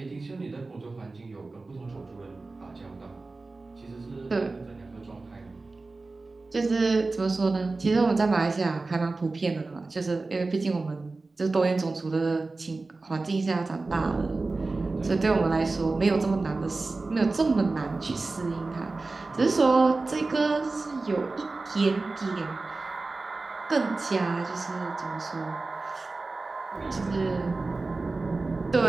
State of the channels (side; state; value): left; quieter; 3.5 dB